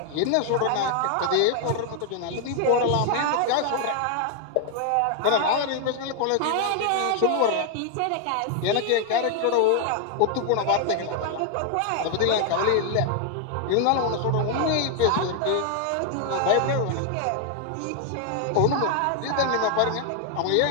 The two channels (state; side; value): different; both; correlation 0.00